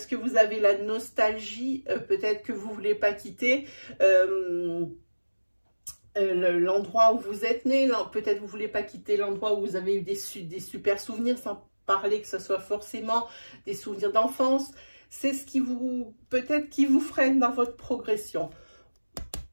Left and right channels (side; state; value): both; inverted; correlation -1.00